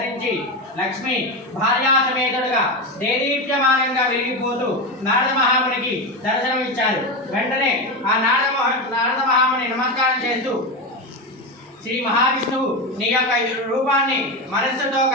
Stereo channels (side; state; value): both; normal; correlation 0.16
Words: లక్ష్మి భార్యా సమేతుడుగా దేదీప్యమానంగా వెలిగిపోతూ నారద మహామునికి దర్శనమిచ్చారు. వెంటనే ఆ నారద మహాముని నమస్కారం చేస్తూ, శ్రీ మహావిష్ణువు నీ యొక్క రూపాన్ని మనస్సుతో